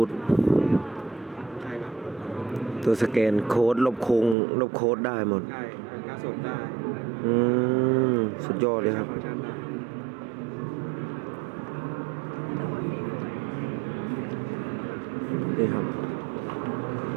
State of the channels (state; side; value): drops out; left; at 4.4 s